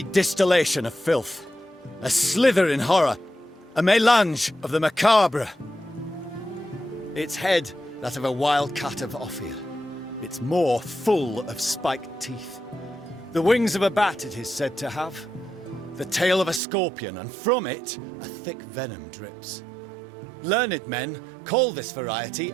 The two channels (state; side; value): drops out; left; at 16.6 s